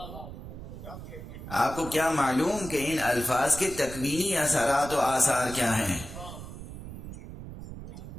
آپ کو کیا معلوم کہ ان الفاظ کے تکوینی اثرات و آثار کیا ہیں؟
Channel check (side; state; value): right; noise; rumble, 11 dB below the sound